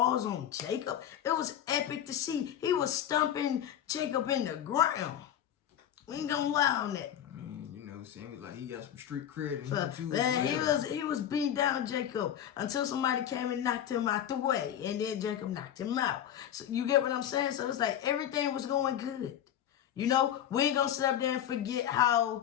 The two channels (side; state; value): right; quieter; 10.4 dB